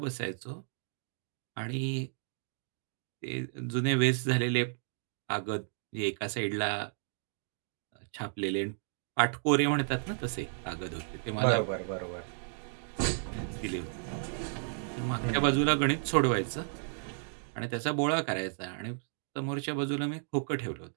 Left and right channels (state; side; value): silent; left; digital silence